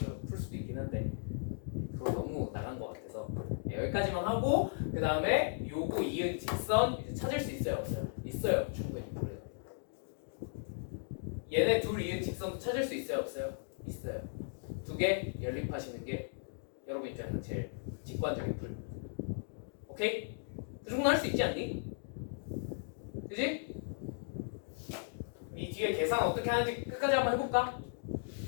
풀 수도 있긴 한데 그거 너무 나간 것 같아서 여기까지만 하고 그 다음에 요거 이은 직선 이제 찾을 수 있어요, 없어요? 있어요, 충분히. 얘네 둘 이은 직선 찾을 수 있어요, 없어요? 있어요. 두 개 연립하시는 게 여러분 입장에서 제일 직관적인 풀. 오케이? 그 정도 할 수 있지 않니? 그지? 이 뒤에 계산 어떻게 하는지 끝까지 한번 해볼까?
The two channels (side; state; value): right; silent; digital silence